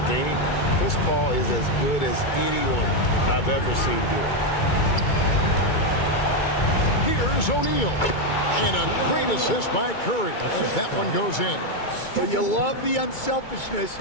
game, Chris Paul is as good as anyone I've ever seen do it. Here's O'Neal. And a great assist by Curry as that one goes in. Well, you love the unselfishness.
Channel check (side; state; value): right; late; 2.2 ms